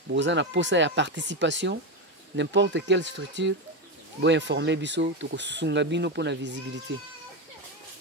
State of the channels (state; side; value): normal; both; correlation 0.12